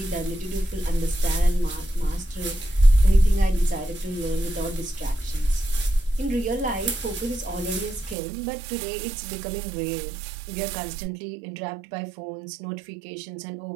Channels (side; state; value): left; drops out; at 8.2 s